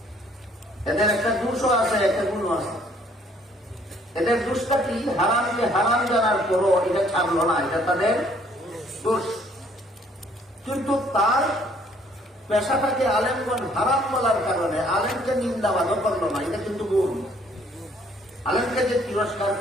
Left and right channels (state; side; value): normal; both; correlation 0.62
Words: এদের একটা দোষও আছে, একটা গুণও আছে। এদের দোষটা কি? হারামকে হারাম জানার পরও এটা ছাড়লো না, এটা তাদের দোষ। কিন্তু তার পেশাটাকে আলেমগণ হারাম বলার কারণে আলেমকে নিন্দাবাদও করলো না, এটা কিন্তু গুণ। আলেমকে যে তিরস্কার